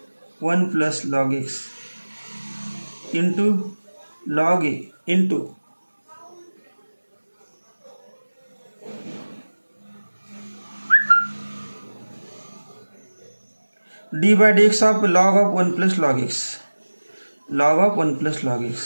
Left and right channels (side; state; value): both; inverted; correlation -1.00